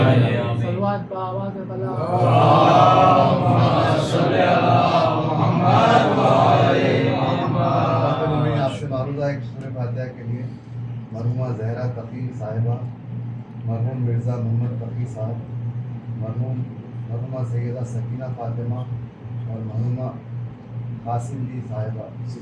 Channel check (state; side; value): identical; both; correlation 1.00